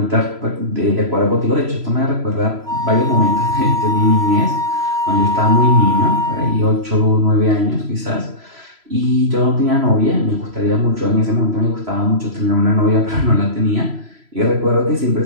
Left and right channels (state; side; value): late; left; 3.0 ms